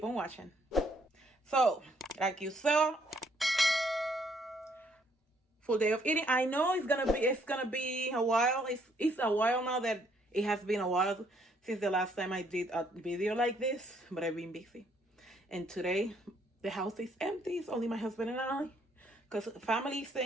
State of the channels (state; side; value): normal; both; correlation 0.68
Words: on watching. So like you saw, full day of eating. I know it's gonna be a while. It's a while now that it has been a while since the last time I did a video like this, but I've been busy. And today the house is empty. It's only my husband and I, because family is